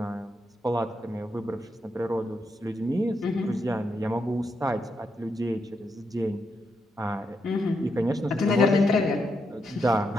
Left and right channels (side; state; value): both; normal; correlation 0.82